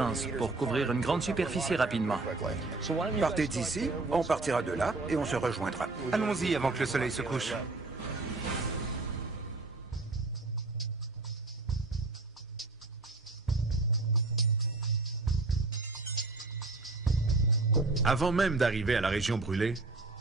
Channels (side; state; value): left; quieter; 3.4 dB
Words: pour couvrir une grande superficie rapidement. Partez d'ici, on partira de là et on se rejoindra. Allons-y avant que le soleil se couche. Avant même d'arriver à la région brûlée,